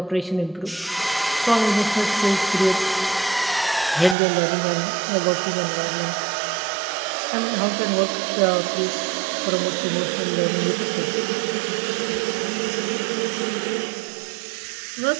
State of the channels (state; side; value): drops out; left; at 4.2 s